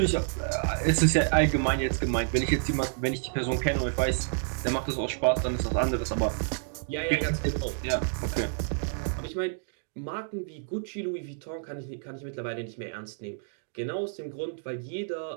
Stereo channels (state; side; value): silent; left; digital silence